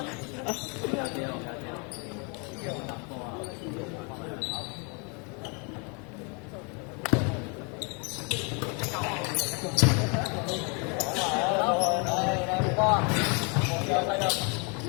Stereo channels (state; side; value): quieter; right; 34.2 dB